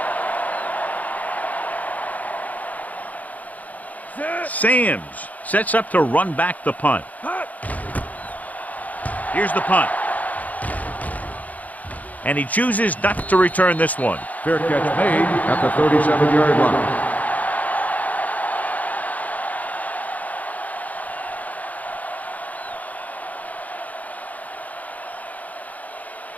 Sams sets up to run back the punt. Here's the punt. And he chooses not to return this one. Fair catch made at the 37-yard line.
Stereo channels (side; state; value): right; late; 0.076 ms